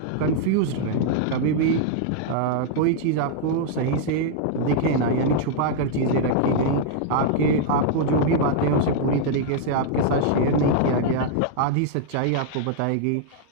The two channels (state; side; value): different; both; correlation -0.01